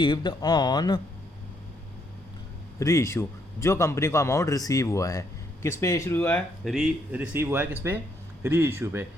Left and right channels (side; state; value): both; normal; correlation 0.73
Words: ऑन री इशू, जो कंपनी को अमाउंट रिसीव हुआ है, किस पे इशू हुआ है, रिसीव हुआ है किस पे, री इशू पे।